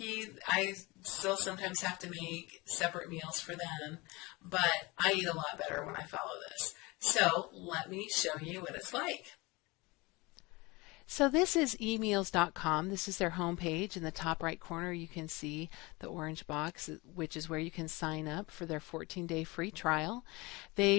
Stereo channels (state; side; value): quieter; right; 24.1 dB